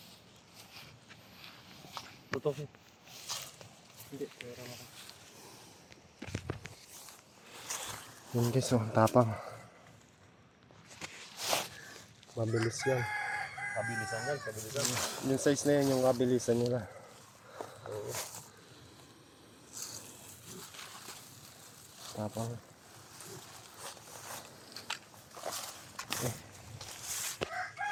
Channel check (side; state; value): both; identical; correlation 1.00